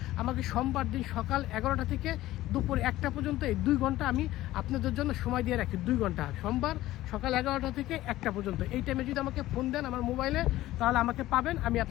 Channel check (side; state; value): right; quieter; 15.8 dB